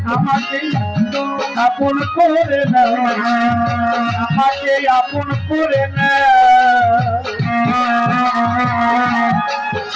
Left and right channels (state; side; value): identical; both; correlation 1.00